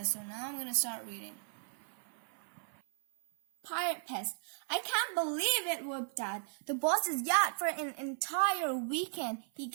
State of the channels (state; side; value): silent; left; 54 dB below the other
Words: So now I'm going to start reading. Pirate Pest. I can't believe it, whooped Dad. The boss's yacht for an entire weekend. He